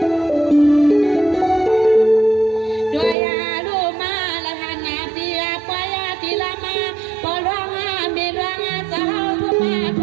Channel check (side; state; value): left; drops out; at 3.2 s